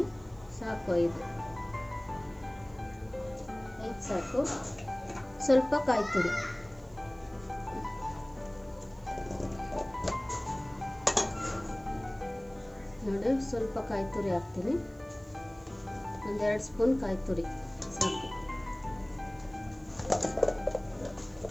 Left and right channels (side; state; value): right; noise; hiss, 29 dB below the sound